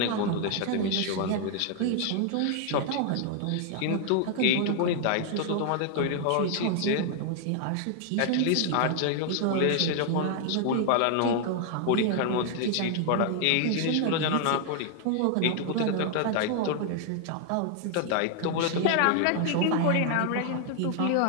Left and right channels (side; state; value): both; different; correlation 0.00